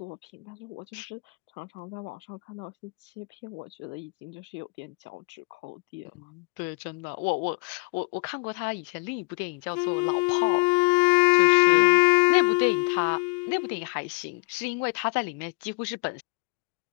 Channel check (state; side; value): quieter; right; 31.4 dB